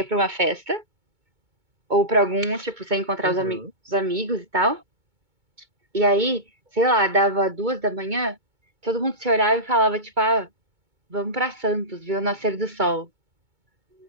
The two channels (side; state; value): left; late; 2.2 ms